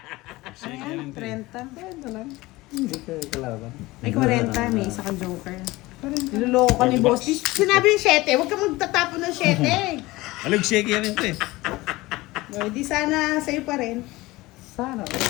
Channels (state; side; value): quieter; right; 20.1 dB